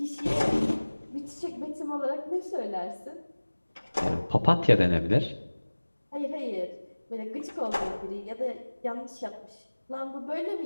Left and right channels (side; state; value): both; inverted; correlation -1.00